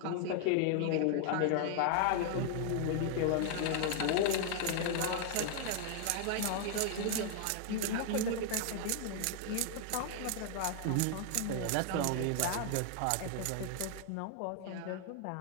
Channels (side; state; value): both; different; correlation 0.00